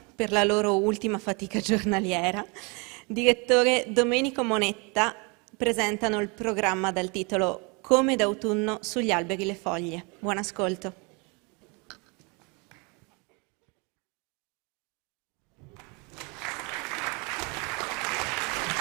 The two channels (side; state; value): left; quieter; 30.7 dB